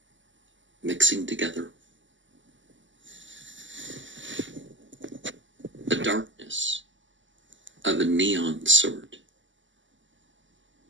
mixing together. The darkness of a neon sort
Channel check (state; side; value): late; left; 0.55 ms